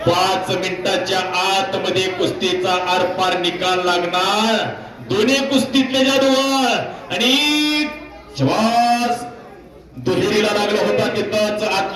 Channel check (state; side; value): identical; both; correlation 1.00